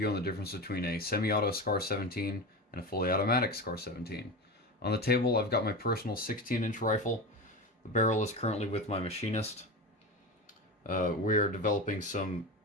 on the difference between a semi-auto SCAR 17 and a fully automatic SCAR 17. On the table I've got my personal 16-inch rifle. The barrel is currently with my machinist. We are developing some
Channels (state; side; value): normal; both; correlation 0.24